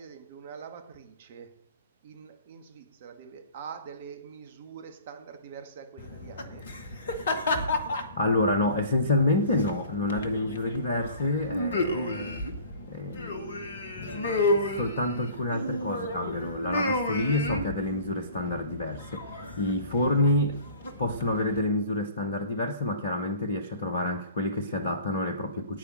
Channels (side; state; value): both; inverted; correlation -0.46